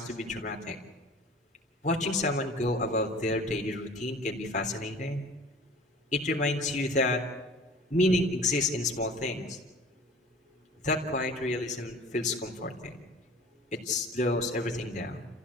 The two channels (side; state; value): both; normal; correlation 0.45